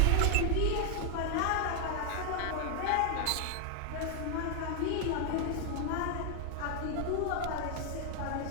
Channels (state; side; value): different; both; correlation 0.00